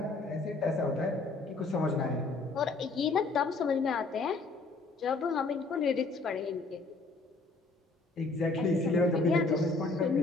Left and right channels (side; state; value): right; quieter; 3.6 dB